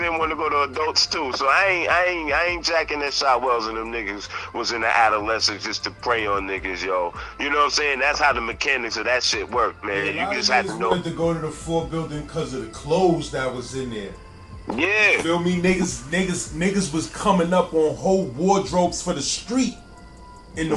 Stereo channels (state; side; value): identical; both; correlation 1.00